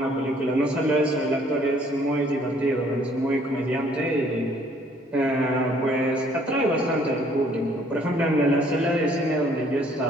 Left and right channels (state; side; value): normal; both; correlation 0.61